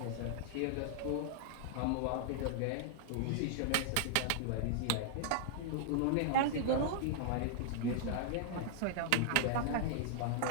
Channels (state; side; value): different; both; correlation -0.01